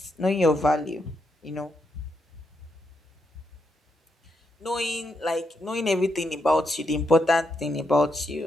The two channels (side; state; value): both; normal; correlation 0.81